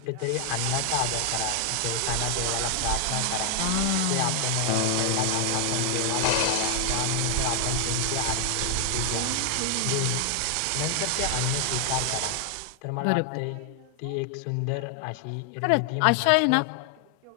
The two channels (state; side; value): different; both; correlation 0.00